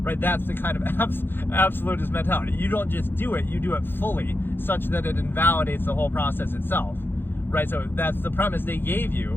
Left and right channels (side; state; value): right; late; 0.10 ms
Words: That's the kind of absolutist mentality. You don't just do it, you do it fully, such that it invalidates the whole process itself. Right, so that's the premise they gave